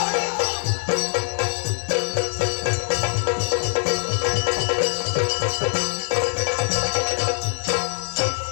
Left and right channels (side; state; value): right; silent; 63 dB below the other